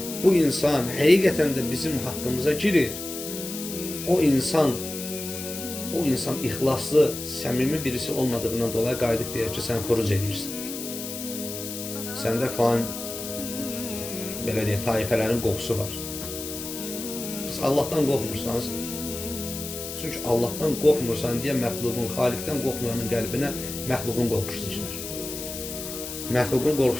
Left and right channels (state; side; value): noise; left; hiss, 8 dB below the sound